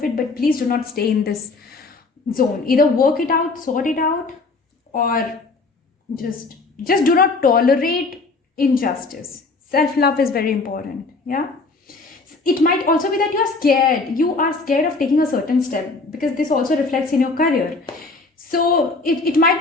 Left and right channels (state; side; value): quieter; right; 3.7 dB